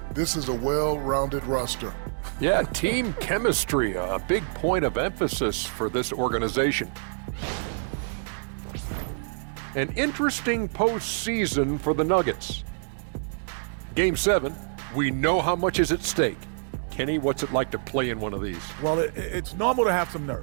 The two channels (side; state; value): left; silent; digital silence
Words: This is a well-rounded roster. Yeah, team chemistry, a big point of emphasis for this organization. An interesting postseason for the Nuggets. Game 7. We know how much is at stake. Kenny, what's it like to play in one of these? Well, it's normal to have some